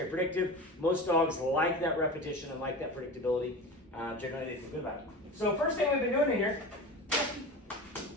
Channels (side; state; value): both; normal; correlation 0.31